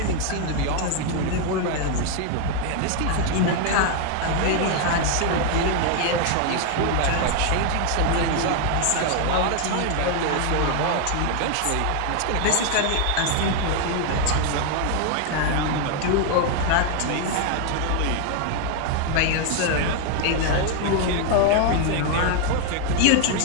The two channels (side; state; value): both; different; correlation 0.00